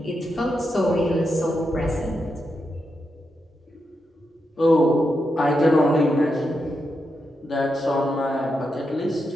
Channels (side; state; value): both; normal; correlation 0.85